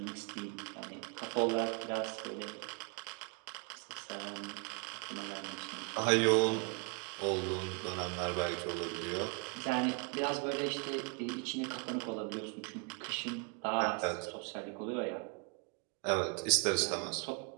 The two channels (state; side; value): quieter; left; 35.1 dB